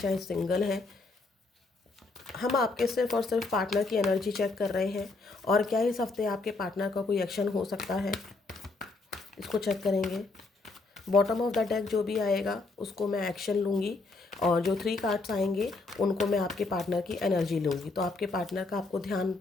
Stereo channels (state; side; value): quieter; right; 3.5 dB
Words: सिंगल हैं, हम आपके सिर्फ और सिर्फ पार्टनर की एनर्जी चेक कर रहे हैं। और क्या इस हफ्ते आपके पार्टनर का कोई एक्शन हो सकता है, इसको चेक करेंगे। बॉटम ऑफ द डेक जो भी आएगा उसको मैं एक्शन लूँगी, और जो 3 कार्ड्स आएंगे उनको मैं आपके पार्टनर की एनर्जी लूँगी। तो आपके पार्टनर का आपको ध्यान